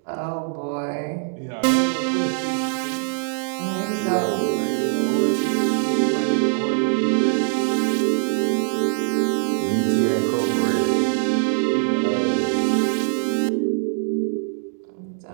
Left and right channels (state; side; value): silent; left; 64 dB below the other